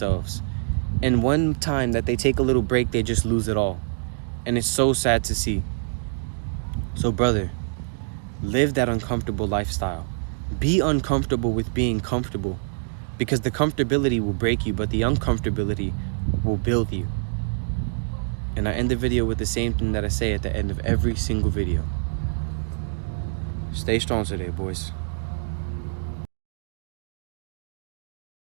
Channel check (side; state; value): left; silent; digital silence